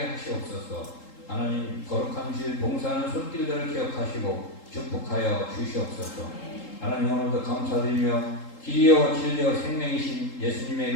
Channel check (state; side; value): late; right; 3.8 ms